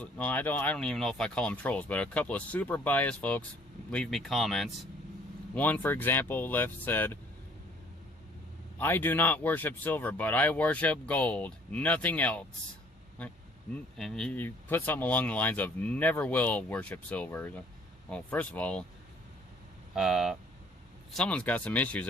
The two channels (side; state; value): both; normal; correlation 0.58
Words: No, I don't even know if I call them trolls, but a couple of super biased folks leave me comments. One, for example, said, "I do not worship silver, but I worship gold. Nothing else." And he put something along the lines of, "Never will worship silver." Well, first of all, someone's got some issues